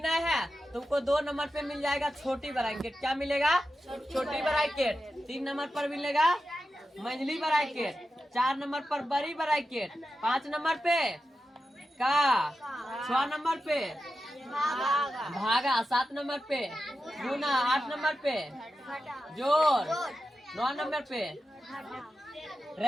है तुमको 2 नंबर पे मिल जाएगा छोटी ब्रैकेट। क्या मिलेगा? छोटी ब्रैकेट। 3 नंबर पर मिलेगा मंझली ब्रैकेट। 4 नंबर पर बड़ी ब्रैकेट। 5 नंबर पे का 6 नंबर पे भागा। 7 नंबर पे गुना। 8 नंबर पे जोड़। 9 नंबर पे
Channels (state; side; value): normal; both; correlation 0.91